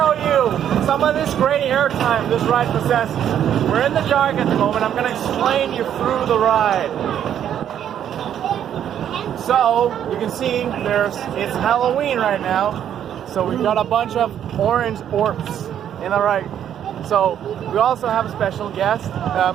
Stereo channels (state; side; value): quieter; left; 9.8 dB